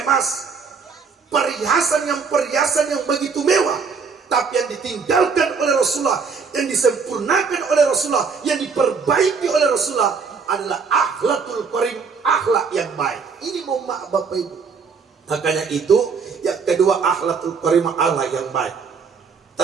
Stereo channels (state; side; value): quieter; left; 5.4 dB